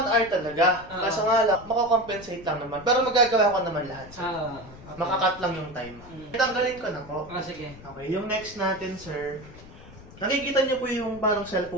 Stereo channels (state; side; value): noise; left; rumble, 18 dB below the sound